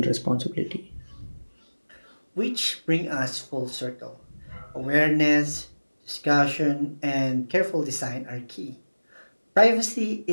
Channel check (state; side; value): inverted; both; correlation -1.00